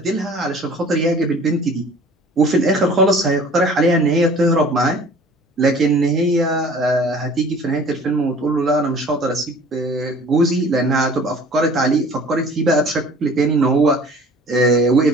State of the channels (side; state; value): both; normal; correlation 0.48